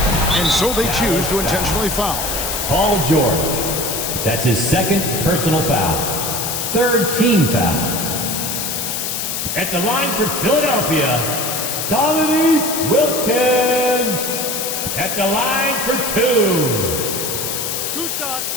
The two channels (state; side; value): noise; left; hiss, 3 dB below the sound